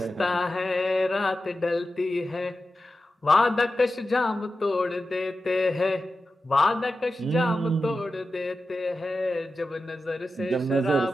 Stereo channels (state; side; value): normal; both; correlation 0.93